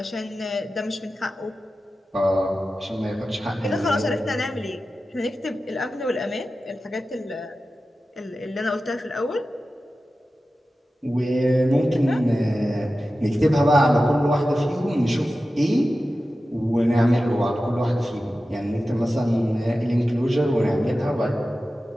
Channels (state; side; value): normal; both; correlation 0.94